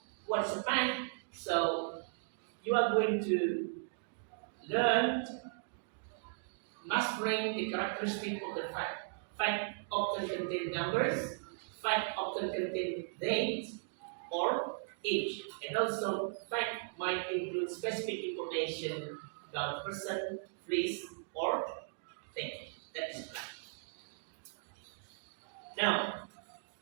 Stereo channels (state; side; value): silent; left; digital silence